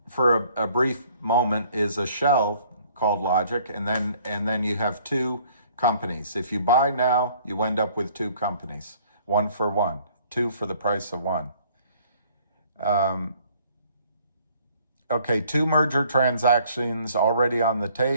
for a brief moment, is a shell called Logic, and then you have 2 companies. If you buy now, you end up with 2 companies, 1 for 1, 2 for the price of 1. Okay, 2 merger transactions already on the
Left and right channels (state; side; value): inverted; both; correlation -0.59